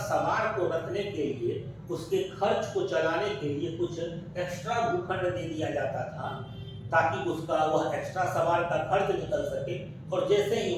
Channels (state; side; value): identical; both; correlation 1.00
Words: सवार को रखने के लिए उसके खर्च को चलाने के लिए कुछ एक्स्ट्रा भूखंड दे दिया जाता था, ताकि उसका वह एक्स्ट्रा सवार का खर्च निकल सके। और जैसे ही